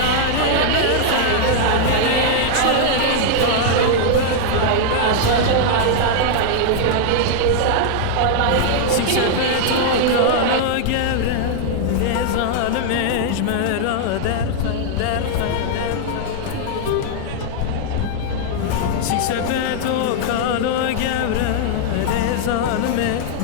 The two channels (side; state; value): both; different; correlation -0.01